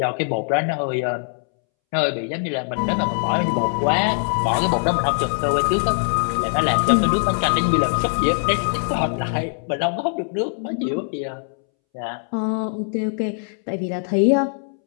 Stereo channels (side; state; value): right; silent; 64 dB below the other